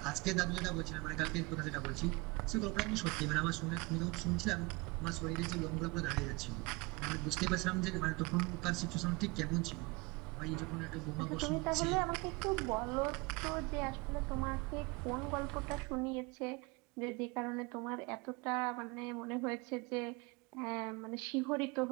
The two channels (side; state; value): left; quieter; 26.0 dB